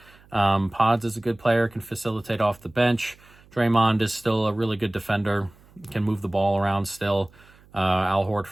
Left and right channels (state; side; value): noise; right; hum, 27 dB below the sound